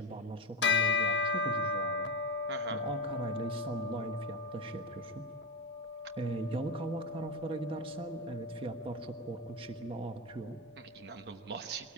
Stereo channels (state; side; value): normal; both; correlation 0.17